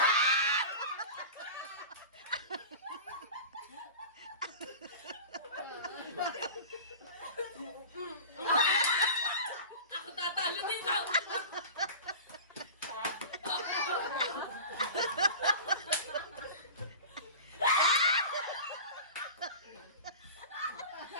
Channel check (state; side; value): inverted; both; correlation -0.34